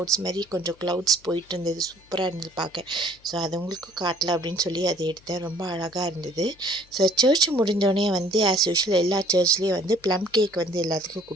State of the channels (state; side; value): noise; left; hum, 29 dB below the sound